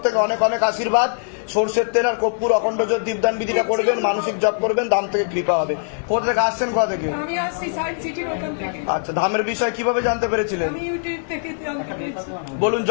থেকে অনেক অনেক আশীর্বাদ। সর্ষের তেল আর কর্পূর অখণ্ড জ্যোতি দীপদান বিধিটা করবেন, মানসিক জপ করবেন, ধাম থেকে কৃপা হবে। কোথা থেকে আসছেন, কোথা থেকে? আমি আসছি সায়েন্স সিটির ওখান থেকে। আচ্ছা, ধামের বিষয় কিভাবে জানতে পেরেছিলেন? আমি ইউটিউব থেকে জানতে পেরেছি। বলুন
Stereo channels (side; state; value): right; silent; 56 dB below the other